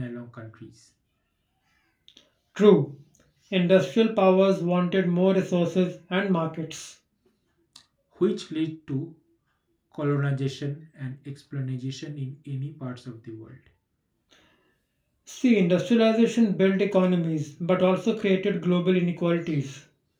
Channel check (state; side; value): identical; both; correlation 1.00